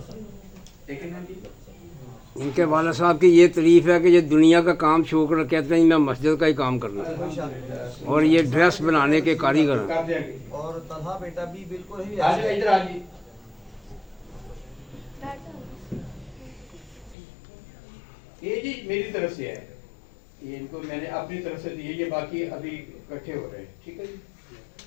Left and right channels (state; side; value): drops out; right; at 17.2 s